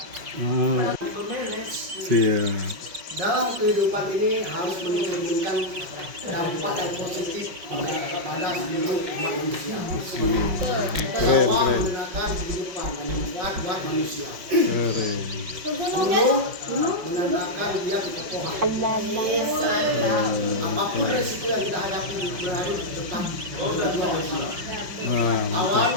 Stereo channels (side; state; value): left; late; 5.5 ms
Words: Siap. Dalam kehidupan ini harus mencerminkan dampak yang positif pada seluruh umat manusia. Keren, Bahwa keren. menggunakan kehidupan yang bermanfaat buat manusia. Keren. Gunung menandakan dia kekokohan. Apapun resiko yang kita hadapi berharus tetap berdua bersama. Wah, Awan